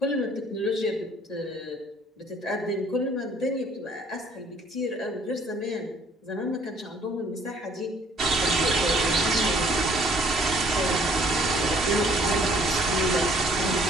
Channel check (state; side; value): normal; both; correlation 0.60